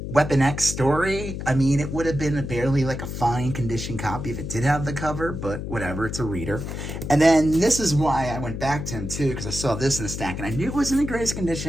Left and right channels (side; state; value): left; noise; hum, 6 dB below the sound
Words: Weapon X story, I mean, it would have been barely like a fine condition copy if it did have the cover, but whatever, it's a reader. And then this is why I went back to him too, because I saw this in the stack, and I knew it was in the greatest